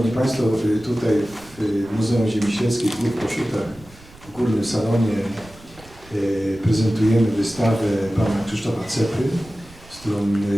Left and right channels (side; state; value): right; noise; rumble, 22 dB below the sound